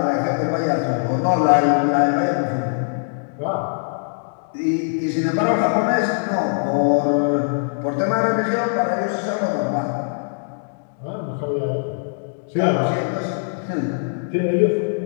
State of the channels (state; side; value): silent; right; digital silence